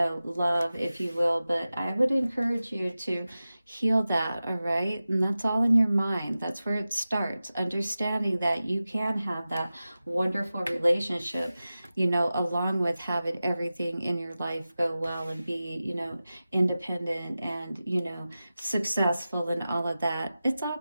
love, if you will. But I would encourage you to heal that, all right? And that's all in your mind. That's where it starts, understanding that you can have that wonderful relationship. you know, along with having everything in your life go well and be, you know, independent and, you know, successful and all of that, it's all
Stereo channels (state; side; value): inverted; both; correlation -0.95